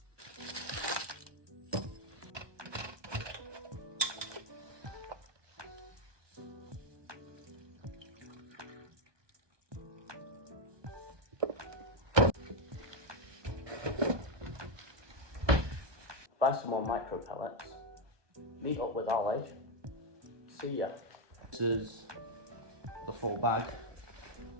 Buy some more micro pellets, meet up with Ollie, see ya. This is the full bag,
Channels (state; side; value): late; left; 1.2 ms